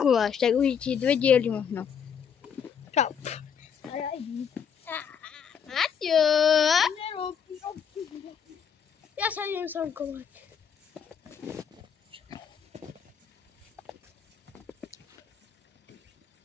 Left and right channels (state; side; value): quieter; right; 7.4 dB